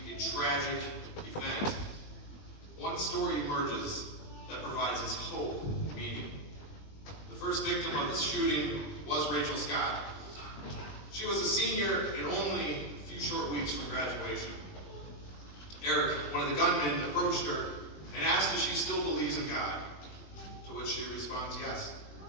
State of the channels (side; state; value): right; late; 20 ms